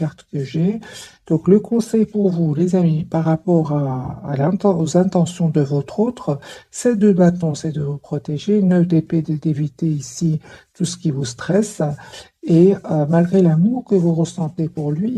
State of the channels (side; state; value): both; identical; correlation 1.00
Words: que j'ai. Donc, le conseil pour vous, les amis, par rapport aux intentions de votre autre, c'est de bâton, c'est de vous protéger, 9 d'épée, d'éviter ici tout ce qui vous stresse. Et malgré l'amour que vous ressentez pour